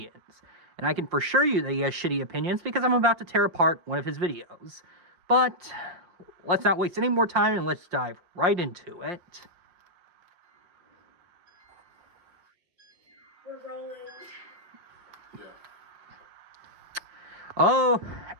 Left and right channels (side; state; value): left; late; 5.7 ms